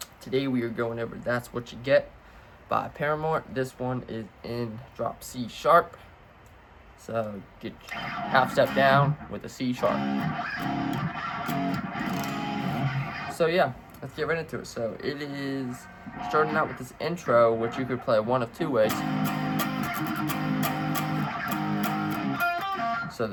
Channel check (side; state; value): both; identical; correlation 1.00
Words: Today we are going over That's What You Get by Paramore. This one is in drop C sharp. So get half step down with a C sharp. So yeah, let's get right into it. So it is starting out with this intro, which you could play one of two ways. So